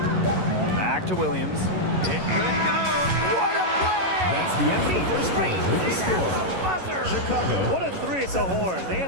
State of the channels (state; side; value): late; left; 11 ms